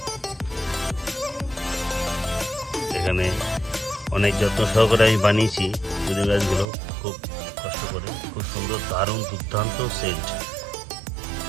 এখানে অনেক যত্ন সহকারে আমি বানিয়েছি পুদিনা গাছগুলো, খুব কষ্ট করে। খুব সুন্দর, দারুণ, দুর্দান্ত সেন্ট,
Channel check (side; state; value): left; drops out; at 6.7 s